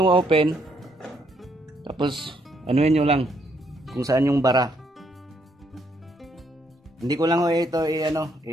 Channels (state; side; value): normal; both; correlation 0.72